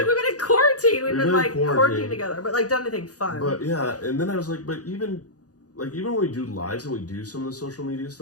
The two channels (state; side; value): late; right; 0.67 ms